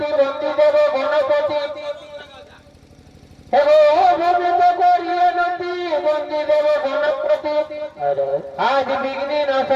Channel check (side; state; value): both; identical; correlation 1.00